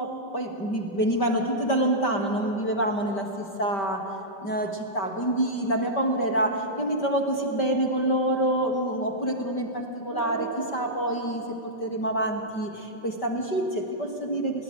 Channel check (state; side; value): late; right; 5.1 ms